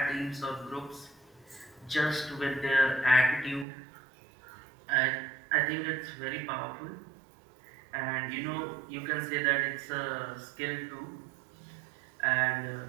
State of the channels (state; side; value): drops out; left; at 3.7 s